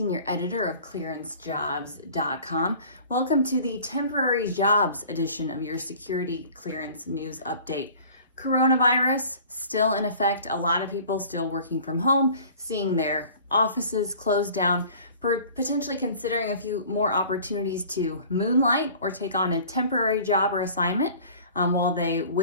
Editor of ClearanceJobs.com. Welcome to the temporary jobs edition of your security clearance news update. Coronavirus still in effect. A lot of people still working from home, seeing their offices closed down, potentially considering a few more opportunities to moonlight or take on a temporary job or assignment while they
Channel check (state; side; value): inverted; both; correlation -0.47